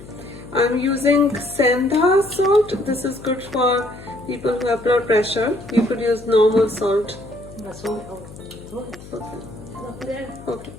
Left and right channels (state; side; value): noise; left; hum, 17 dB below the sound